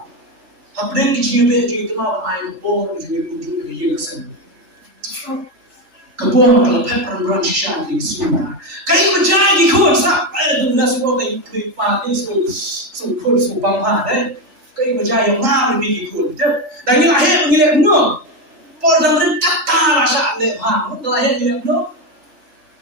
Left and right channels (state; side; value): late; left; 3.4 ms